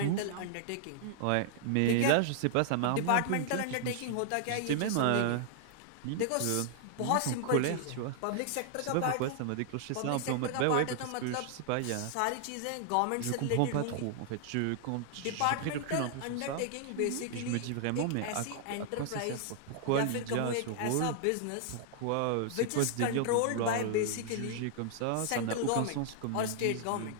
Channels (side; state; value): both; different; correlation -0.01